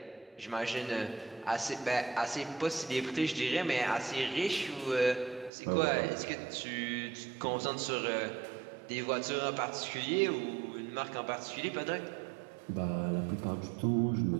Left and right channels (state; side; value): drops out; left; at 5.5 s